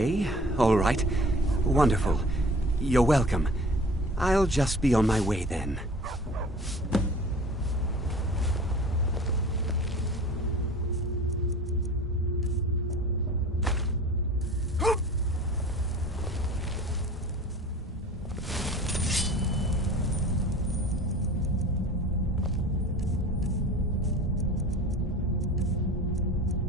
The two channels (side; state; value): both; normal; correlation 0.43